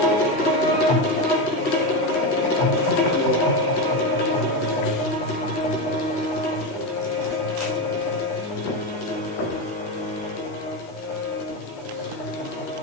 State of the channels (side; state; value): both; normal; correlation 0.14